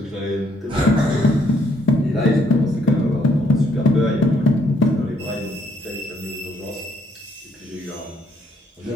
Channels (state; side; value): normal; both; correlation 0.70